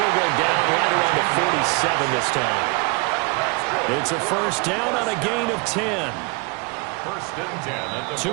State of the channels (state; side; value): quieter; left; 29.7 dB